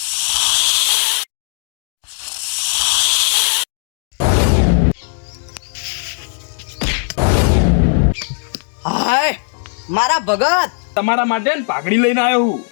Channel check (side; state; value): right; silent; 68 dB below the other